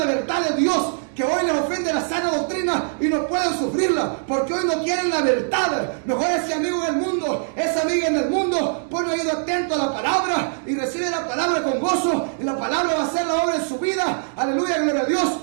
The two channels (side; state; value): left; silent; 61 dB below the other